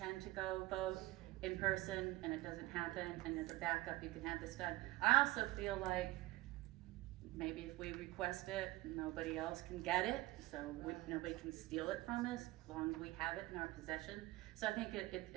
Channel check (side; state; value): left; quieter; 19.1 dB